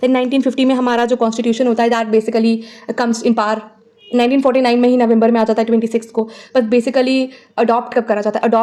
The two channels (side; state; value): both; identical; correlation 1.00